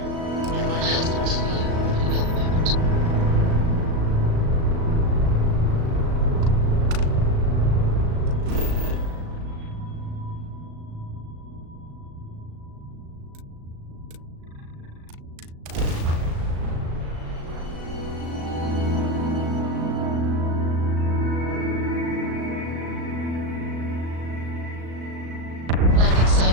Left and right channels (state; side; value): late; left; 37 ms